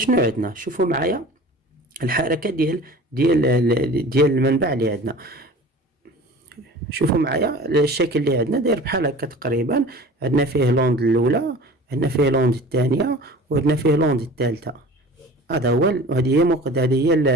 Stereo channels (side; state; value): both; normal; correlation 0.41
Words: عندنا؟ شوفوا معايا الحركه ديال المنبع اللي عندنا. شوفوا معايا الشكل اللي عندنا داير بحال هكا تقريبا، عندنا فيه لوند الاولى، عندنا فيه لوند الثانيه، وعندنا فيه لوند الثالثه. هذا هو، هذه هي